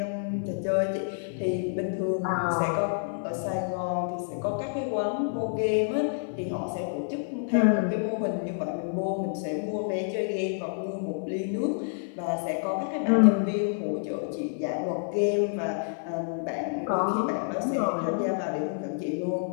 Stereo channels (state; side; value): silent; right; digital silence